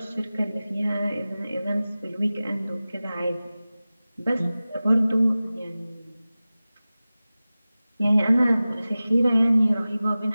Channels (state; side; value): inverted; both; correlation -0.97